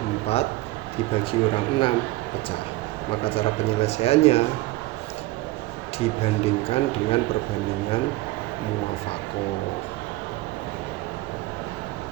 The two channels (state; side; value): quieter; left; 18.8 dB